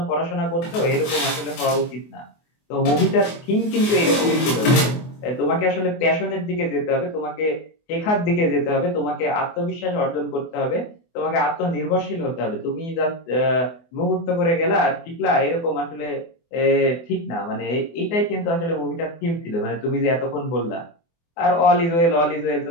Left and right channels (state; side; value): late; right; 24 ms